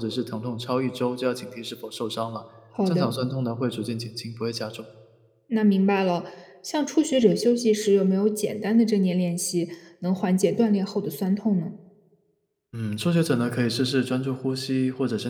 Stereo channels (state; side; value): identical; both; correlation 1.00